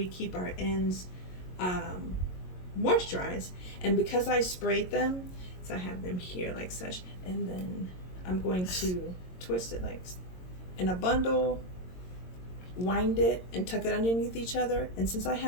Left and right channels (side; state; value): right; late; 22 ms